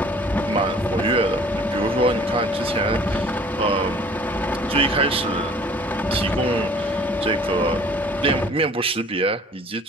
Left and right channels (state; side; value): normal; both; correlation 0.52